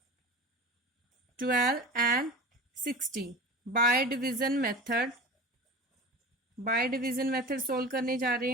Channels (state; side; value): normal; both; correlation 0.33